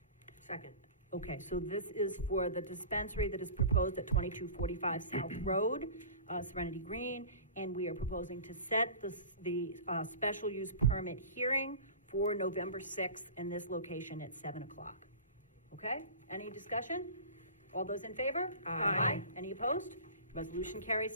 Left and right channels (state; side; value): inverted; both; correlation -0.37